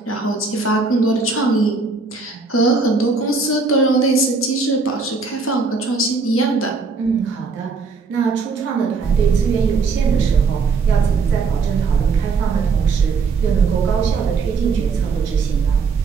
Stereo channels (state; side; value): quieter; left; 4.6 dB